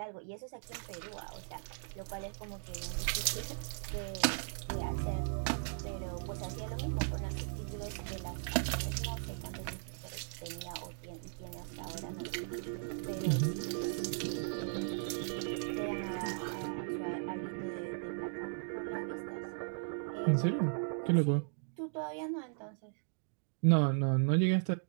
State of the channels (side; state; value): left; silent; digital silence